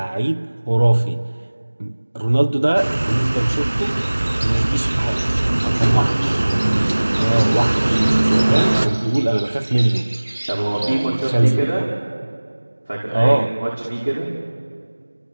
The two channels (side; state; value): both; inverted; correlation -1.00